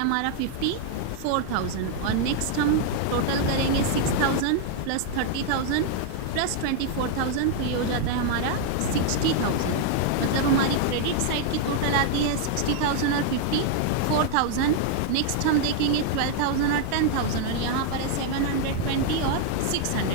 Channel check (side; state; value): both; different; correlation 0.00